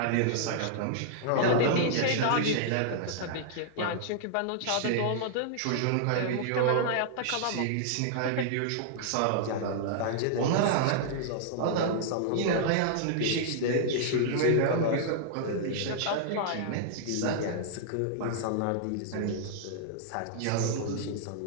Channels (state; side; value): different; both; correlation -0.01